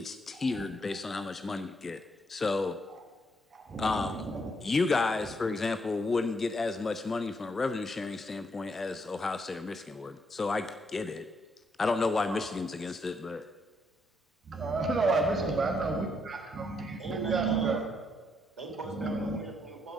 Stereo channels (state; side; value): normal; both; correlation 0.75